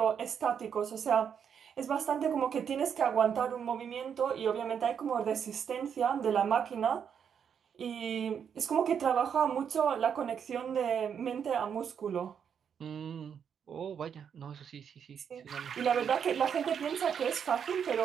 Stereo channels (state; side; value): quieter; left; 7.7 dB